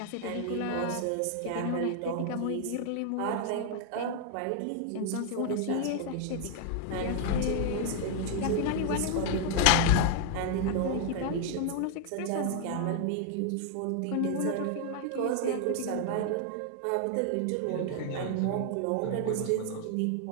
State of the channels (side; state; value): both; different; correlation 0.00